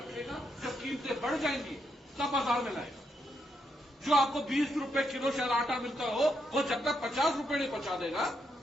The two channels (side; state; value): both; normal; correlation 0.80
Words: जब कीमतें बढ़ जाएंगी तब बाजार में लाएगा। जो आपको 20 रुपए किलो शायद आटा मिलता हो, वो जब तक 50 रुपए नहीं पहुंचा देगा